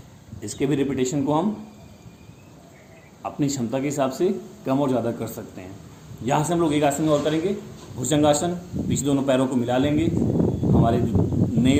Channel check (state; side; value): identical; both; correlation 1.00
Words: इसके भी रिपीटेशन को हम अपनी क्षमता के हिसाब से कम और ज़्यादा कर सकते हैं। यहाँ से हम लोग एक आसन और करेंगे, भुजंगासन। पीछे दोनों पैरों को मिला लेंगे। हमारे